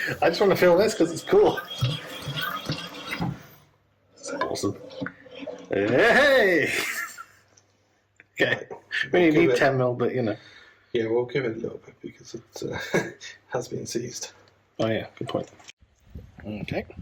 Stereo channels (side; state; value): both; identical; correlation 1.00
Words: I just want to feel this because it's cool. That's awesome. Hey! Okay. We only need 10mm, but you know. Yeah, we'll give it a little bit because it has been seized. Oh yeah, good point. Okay.